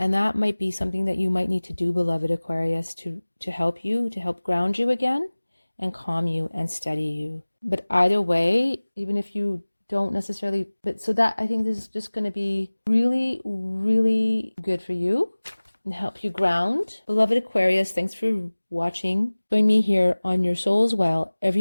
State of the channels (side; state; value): both; inverted; correlation -1.00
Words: that might be something that you might need to do, beloved Aquarius, to help ground you again and calm you and steady you. But either way, even if you don't necessarily, so that I think this is just going to be really, really good for you and help you ground. Beloved Aquarius, thanks for watching. Join me here on Your Soul's Well